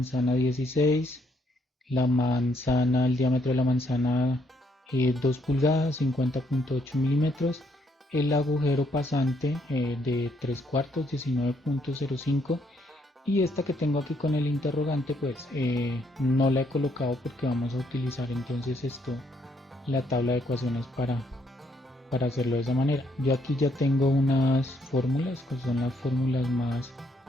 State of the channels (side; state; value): both; normal; correlation 0.72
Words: 16, la manzana, el diámetro de la manzana 2 pulgadas, 50.8 milímetros, el agujero pasante de 3 cuartos, 19.05, y esta que tengo aquí con el interrogante pues no la he colocado porque vamos a utilizar entonces esto, la tabla de ecuaciones para hacerlo de esa manera. Yo aquí ya tengo unas fórmulas que son las fórmulas